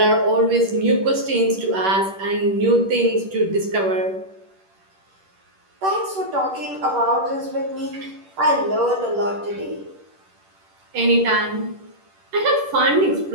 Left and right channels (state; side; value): late; left; 10 ms